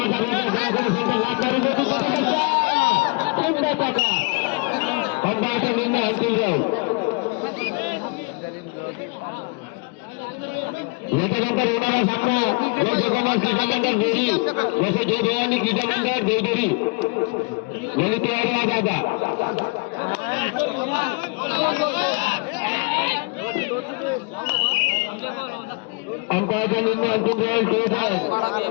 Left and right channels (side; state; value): right; quieter; 30.5 dB